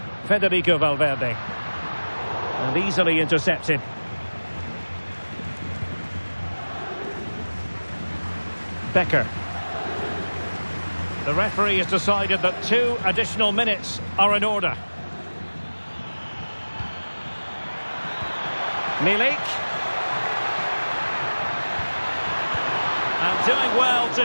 Federico Valverde. And easily intercepted. Becker. The referee has decided that 2 additional minutes are in order. Milik. And doing well to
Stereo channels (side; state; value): both; inverted; correlation -1.00